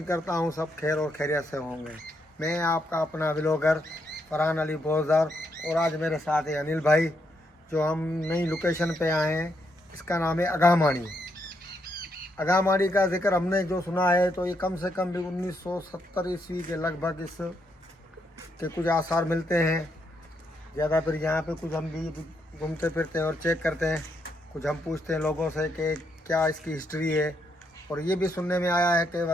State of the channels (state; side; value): normal; both; correlation 0.78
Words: करता हूँ सब खैर और खैरियत से होंगे। मैं आपका अपना व्लॉगर फरहान अली बोजर और आज मेरे साथ है अनिल भाई, जो हम नई लोकेशन पे आए हैं। इसका नाम है अगामाड़ी। अगामाड़ी का जिक्र हमने जो सुना है तो ये कम से कम भी 1970 ईस्वी के लगभग इस के कुछ आसार मिलते हैं। ज़्यादा फिर यहाँ पे कुछ हम भी घूमते फिरते हैं और चेक करते हैं। कुछ हम पूछते हैं लोगों से कि क्या इसकी हिस्ट्री है। और ये भी सुनने में आया है कि